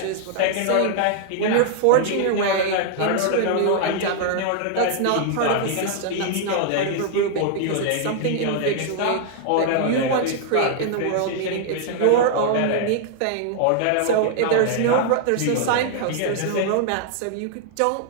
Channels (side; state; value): both; different; correlation -0.01